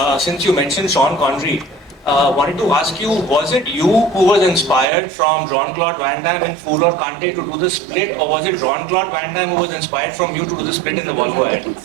you mentioned Sean Connery, wanted to ask you, was it you who was inspired from Jean-Claude Van Damme in Fool or Kante to do the split, or was it Jean-Claude Van Damme who was inspired from you to do the split in the Volvo ad?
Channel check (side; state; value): left; drops out; at 4.9 s